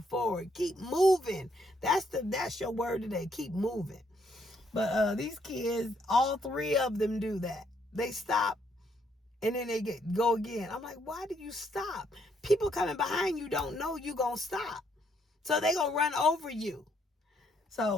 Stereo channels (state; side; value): normal; both; correlation 0.72